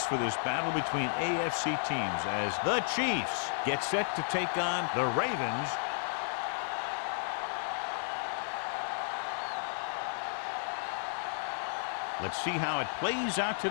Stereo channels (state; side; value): silent; right; digital silence